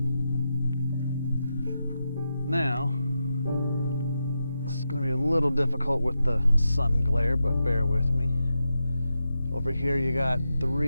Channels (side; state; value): both; inverted; correlation -0.88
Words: Now, this is going to be a little difficult with the sun glare, but bear with me. Over here you got